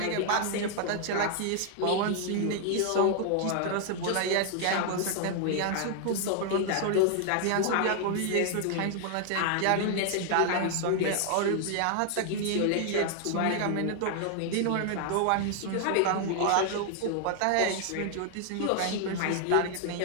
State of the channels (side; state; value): both; different; correlation 0.00